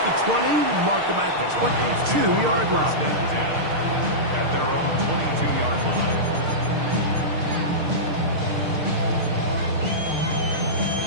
the 20, mark them at the 22-yard line. At their own 22-yard line.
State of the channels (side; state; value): left; late; 6.5 ms